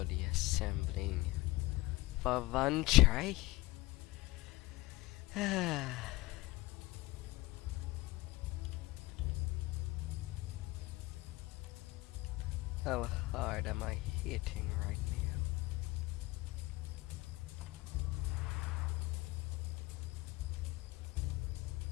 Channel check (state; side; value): quieter; right; 20.4 dB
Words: assembling for one try. How hard am I hitting right now?